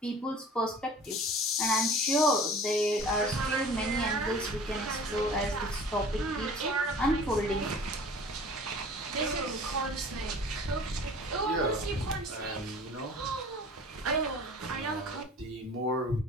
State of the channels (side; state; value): both; normal; correlation 0.44